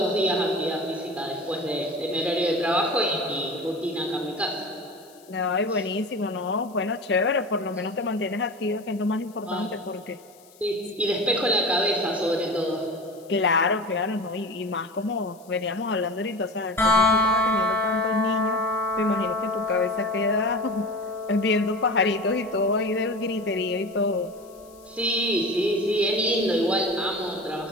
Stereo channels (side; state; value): left; noise; hiss, 27 dB below the sound